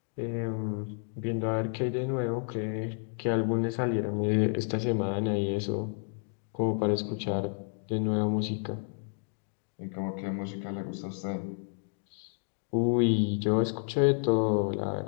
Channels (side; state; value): right; silent; 57 dB below the other